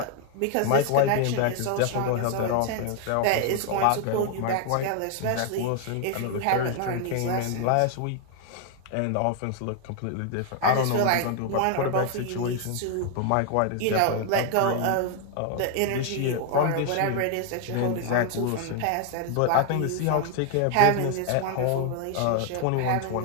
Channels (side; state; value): both; different; correlation 0.00